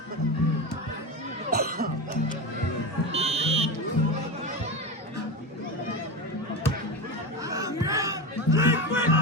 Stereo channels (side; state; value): both; normal; correlation 0.21